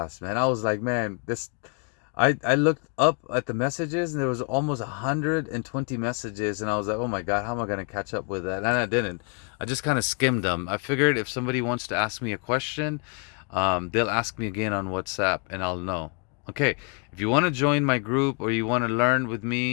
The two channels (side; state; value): right; quieter; 37.4 dB